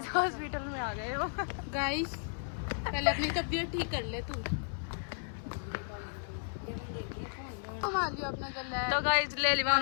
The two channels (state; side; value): silent; right; 55 dB below the other